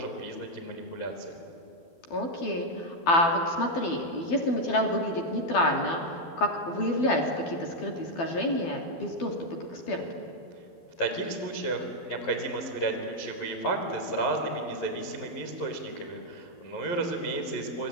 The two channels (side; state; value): right; late; 12 ms